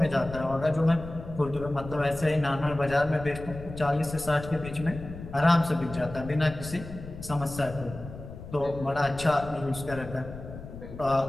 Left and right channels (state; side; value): noise; left; rumble, 12 dB below the sound